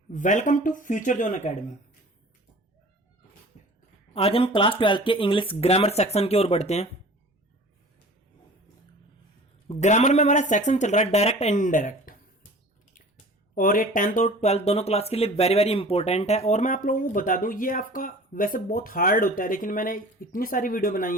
Welcome to future zone academy. आज हम class 12 के इंग्लिश ग्रामर सेक्शन की ओर बढ़ते हैं। ग्रामर में हमारा सेक्शन चल रहा है डायरेक्ट एंड इनडायरेक्ट, और ये 10th और 12th दोनों क्लास के लिए वेरी वेरी इंपॉर्टेंट है। और मैं आप लोगों को बता दूं, ये आपका वैसे बहुत हार्ड होता है, लेकिन मैंने इतनी सारी वीडियो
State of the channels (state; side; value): normal; both; correlation 0.43